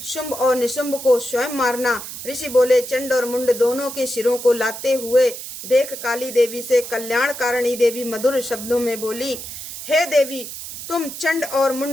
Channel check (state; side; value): noise; right; hiss, 10 dB below the sound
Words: शुंभ और निशुंभ को स्वयं मारना। ऋषि बोले। चंड और मुंड दोनों के सिरों को लाते हुए देख काली देवी से कल्याणकारिणी देवी मधुर शब्दों में बोली, हे देवी, तुम चंड और